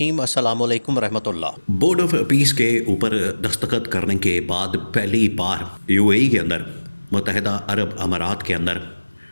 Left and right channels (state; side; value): inverted; both; correlation -1.00